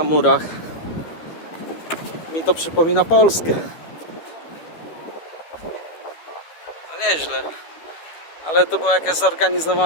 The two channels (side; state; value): right; late; 13 ms